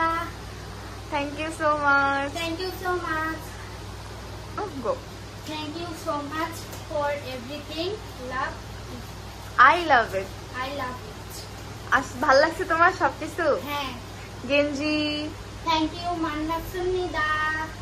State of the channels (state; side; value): identical; both; correlation 1.00